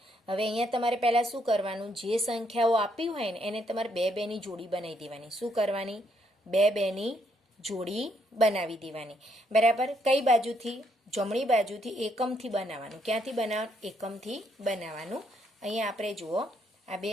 હવે અહીંયા તમારે પહેલાં શું કરવાનું? જે સંખ્યાઓ આપી હોય ને એને તમારે બે બેની જોડી બનાવી દેવાની. શું કરવાની? બે બેની જોડી બનાવી દેવાની. બરાબર. કઈ બાજુથી? જમણી બાજુથી એકમથી બનાવવાનું. ક્યાંથી બનાવવાનું? એકમથી બનાવવાનું. અહીંયા આપણે જુઓ, આ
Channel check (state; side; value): normal; both; correlation 0.73